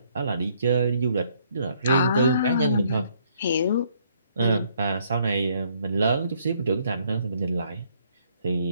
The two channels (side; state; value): both; inverted; correlation -0.67